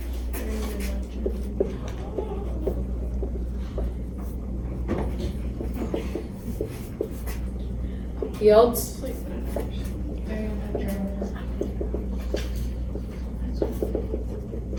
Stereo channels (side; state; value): both; identical; correlation 1.00